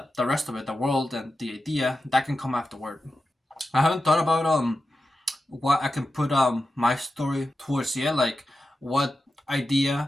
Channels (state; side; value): normal; both; correlation 0.92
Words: rest of it, the world and the idea, that can come afterward. I haven't thought about what I can put my story towards. Yeah, like what